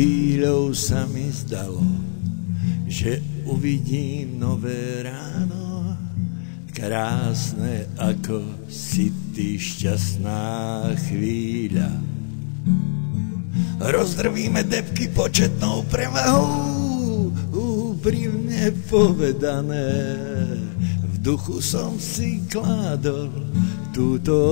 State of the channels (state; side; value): silent; right; digital silence